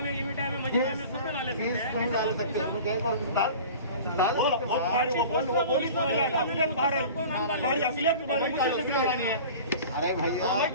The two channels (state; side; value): inverted; both; correlation -0.39